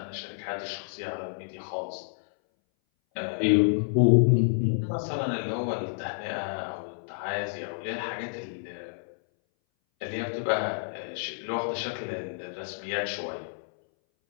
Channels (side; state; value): right; silent; 58 dB below the other